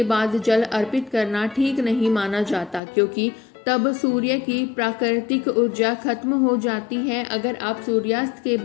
बाद जल अर्पित करना ठीक नहीं माना जाता, क्योंकि तब सूर्य की प्राकृतिक ऊर्जा खत्म हो जाती है। अगर आप सूर्यास्त के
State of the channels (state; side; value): drops out; right; at 2.8 s